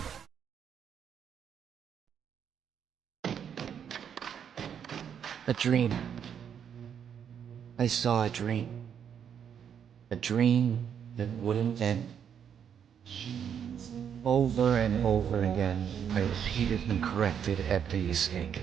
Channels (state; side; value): quieter; left; 8.2 dB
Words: A dream. I saw a dream. A dream that wouldn't end. Over and over again, I repeated and corrected every mistake.